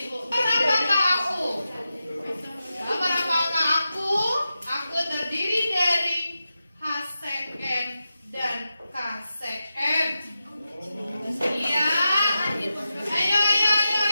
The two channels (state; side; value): inverted; both; correlation -0.91